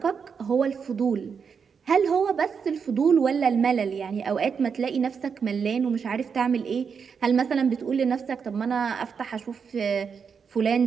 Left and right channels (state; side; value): quieter; left; 6.2 dB